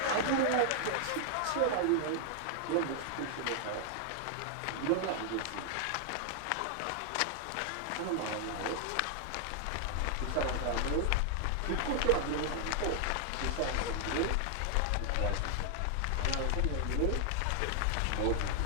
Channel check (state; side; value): different; both; correlation 0.00